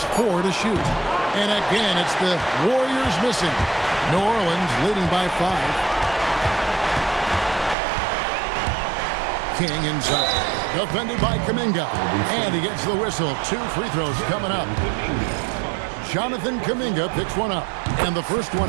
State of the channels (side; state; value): left; drops out; at 7.8 s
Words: 4 to shoot. And again, it's the Warriors missing. New Orleans leading by 5. King inside. Defended by Kuminga. And he gets the whistle. 2 free throws coming up. Jonathan Kuminga picks one up. And the first one